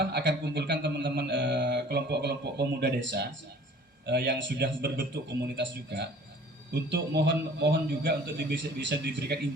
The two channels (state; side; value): normal; both; correlation 0.50